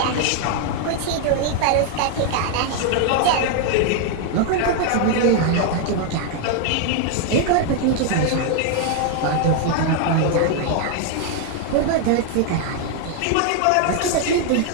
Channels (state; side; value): different; both; correlation 0.00